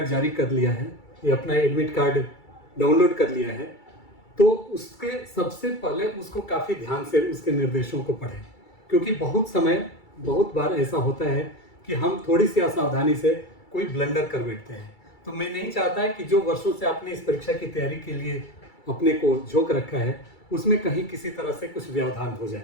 जारी कर लिया है या अपना एडमिट कार्ड डाउनलोड कर लिया है, तो उसके सबसे पहले उसको काफ़ी ध्यान से उसके निर्देशों को पढ़ें, क्योंकि बहुत बार ऐसा होता है कि हम थोड़ी सी असावधानी से कोई ब्लंडर कर बैठते हैं। तो मैं नहीं चाहता है कि जो वर्षों से आपने इस परीक्षा की तैयारी के लिए अपने को झोंक रखा है, उसमें कहीं किसी तरह से कुछ व्यवधान हो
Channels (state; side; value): late; right; 2.3 ms